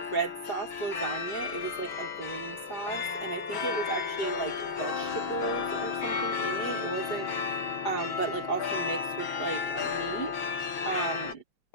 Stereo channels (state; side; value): late; right; 4.9 ms